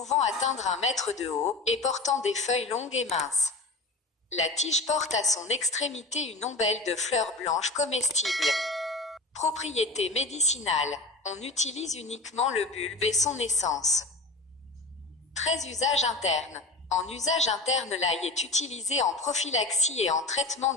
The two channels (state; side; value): quieter; right; 3.1 dB